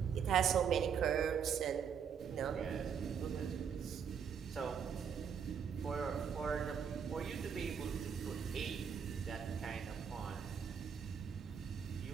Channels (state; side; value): quieter; left; 7.2 dB